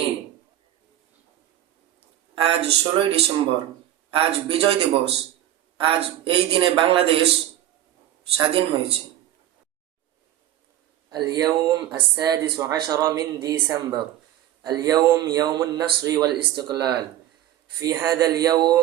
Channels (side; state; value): left; quieter; 12.7 dB